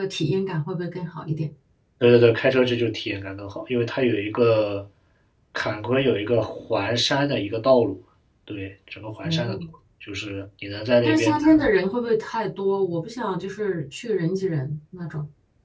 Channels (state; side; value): identical; both; correlation 1.00